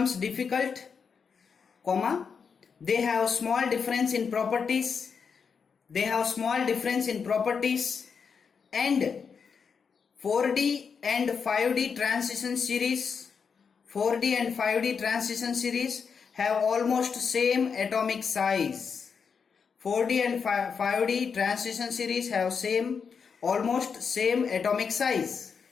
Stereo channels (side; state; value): right; quieter; 6.0 dB